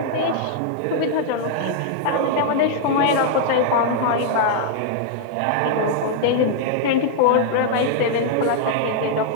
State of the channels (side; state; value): both; different; correlation -0.01